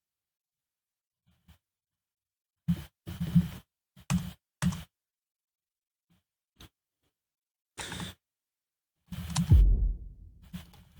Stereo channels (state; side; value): identical; both; correlation 1.00